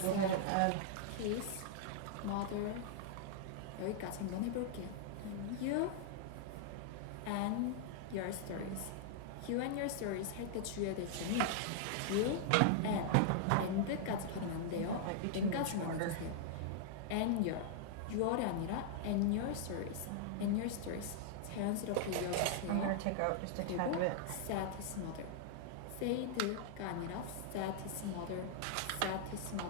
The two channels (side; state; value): both; different; correlation -0.01